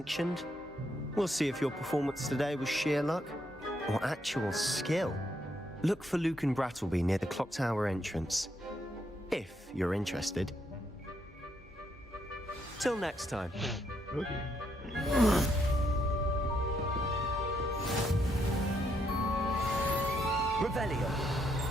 We'll see if your performance today was sheer luck or actual skill. Look for Luke and Brattleby near the clock tower entrance, if you're interested. Till next time. Revelio.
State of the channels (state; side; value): normal; both; correlation 0.76